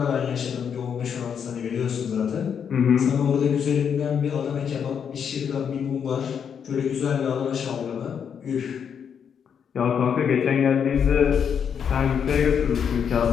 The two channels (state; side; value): quieter; right; 7.5 dB